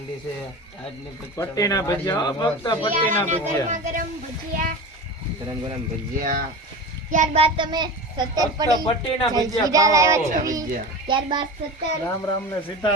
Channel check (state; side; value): normal; both; correlation 0.29